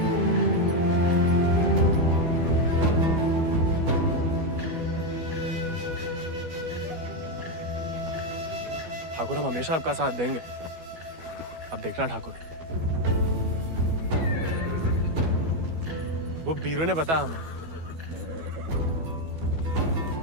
ठाकुर, हम हमेशा आपका साथ देंगे। अब देखना ठाकुर, वो बीरू ने बताया हमें।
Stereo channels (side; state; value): left; late; 12 ms